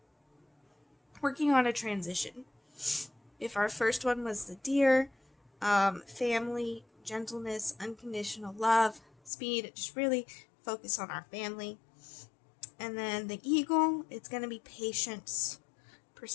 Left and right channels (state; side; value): drops out; right; at 9.3 s